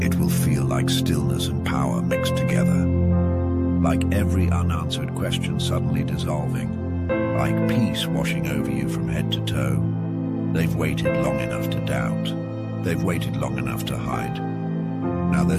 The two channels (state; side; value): identical; both; correlation 1.00